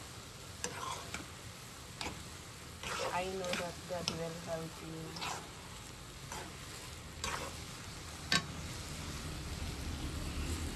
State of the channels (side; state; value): both; identical; correlation 1.00